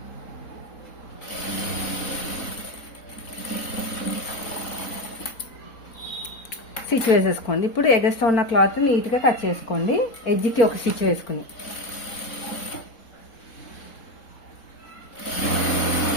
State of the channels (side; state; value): right; late; 4.4 ms